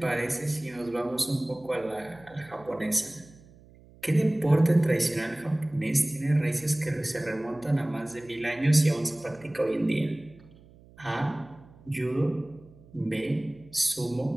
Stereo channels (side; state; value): right; noise; hum, 24 dB below the sound